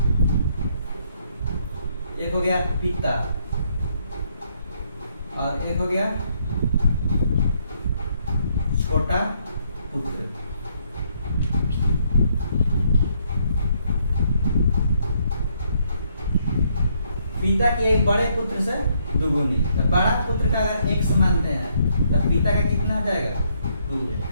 एक हो गया पिता और एक हो गया छोटा पुत्र। पिता के एक बड़े पुत्र से दुगुनी, तो बड़ा पुत्र का अगर x मानते हैं तो पिता का कितना हो जाएगा 2x।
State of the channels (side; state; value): both; inverted; correlation -0.71